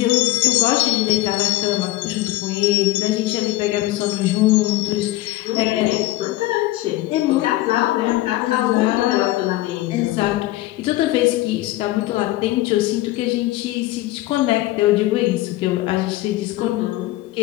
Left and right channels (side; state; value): right; quieter; 17.1 dB